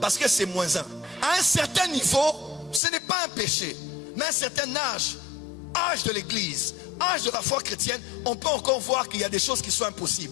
parce que c'est moins 1. À un certain niveau, ce n'est pas un péché. Mais à un certain âge de l'église, âge de la foi chrétienne, on peut encore voir qu'il y a des choses qui sont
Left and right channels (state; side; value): drops out; right; at 2.8 s